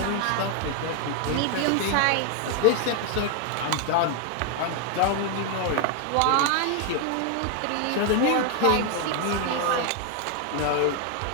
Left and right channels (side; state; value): both; different; correlation 0.00